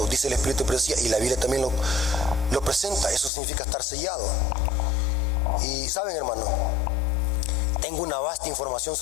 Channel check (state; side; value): drops out; right; at 3.3 s